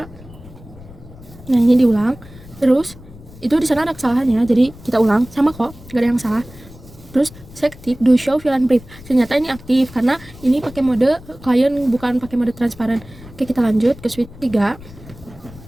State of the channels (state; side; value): noise; left; rumble, 19 dB below the sound